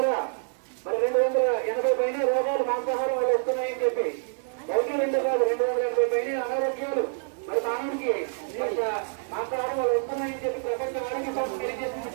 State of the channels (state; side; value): silent; left; digital silence